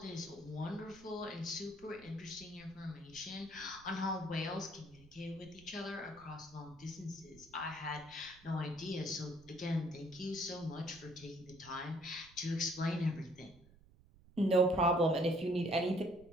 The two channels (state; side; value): noise; right; rumble, 24 dB below the sound